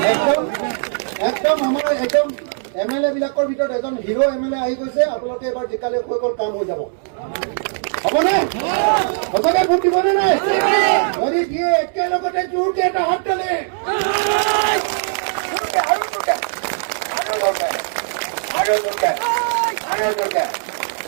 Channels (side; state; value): left; silent; 63 dB below the other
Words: একদম আমাৰ একদম এমএলএ বিলাকৰ ভিতৰত এজন হিৰো এমএলএ আহি গৈছে আপোনালোকে এবাৰ জিকালে হৈ গ'ল কাম হৈ যাব হ'বনে সঁচাকে ভোট দিবনে নাই যদি দিয়ে একেলগতে জোৰকে এটা হাত তালে আৰু জোৰকে